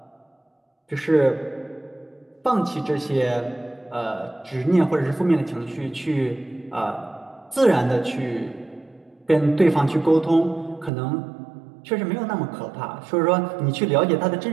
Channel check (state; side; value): drops out; left; at 10.9 s